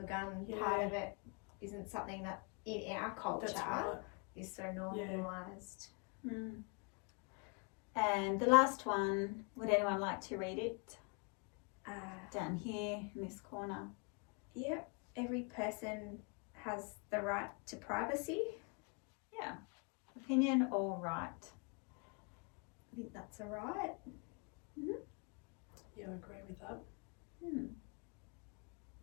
gun Yeah. part of it isn't something that in our culture That's right. is so normalised. And the last one, would anyone like to read it? Down here in this corner. Yep, every person has the right to privacy. Yeah. Opinion or right? I think that's a right. Yeah, I agree with that.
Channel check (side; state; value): right; quieter; 34.5 dB